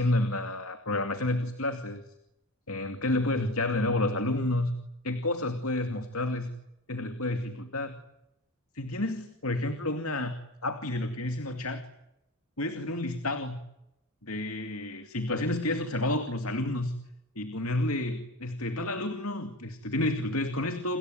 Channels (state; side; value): normal; both; correlation 0.32